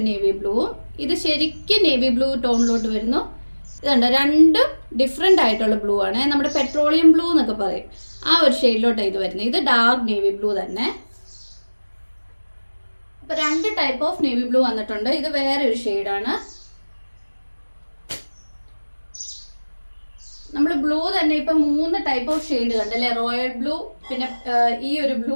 നേവി ബ്ലൂവും ഇത് ശരിക്കും നേവി ബ്ലൂ ടോണിലോട്ട് വരുന്നു. ഇതുണ്ടോ, രണ്ടും ഡിഫറെൻ്റ് ആയിട്ടുള്ള ബ്ലൂ ആണ്. നമ്മുടെ പെട്രോളിയം ബ്ലൂ എന്നൊക്കെ പറയും, ആ ഒരു ഷെയ്ഡിലോട്ടാണ് ഇത് വരുന്നത്. ഇത് ഡാർക്ക് നേവി ബ്ലൂ തന്നെ. അപ്പോൾ 2 ടൈപ്പ് ഓഫ് നേവി ബ്ലൂ വന്നിട്ടുണ്ട്. ഇത് വേറെ ഒരു ഷെയ്ഡാണ്. നമ്മൾ ബ്ലൂ തന്നെ ഇപ്പം 3 ടൈപ്പ് ഓഫ് ഷെയ്ഡ് കണ്ടല്ലേ. റോയൽ ബ്ലൂ, പിന്നെ ഈ ഒരു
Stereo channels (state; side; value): inverted; both; correlation -1.00